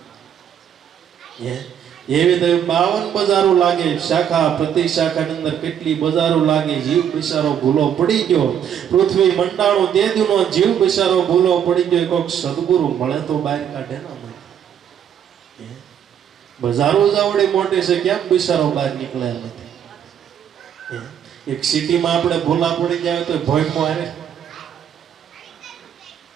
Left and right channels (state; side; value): quieter; left; 9.0 dB